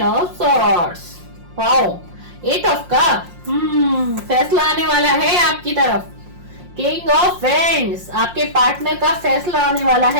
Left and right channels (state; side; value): late; left; 5.6 ms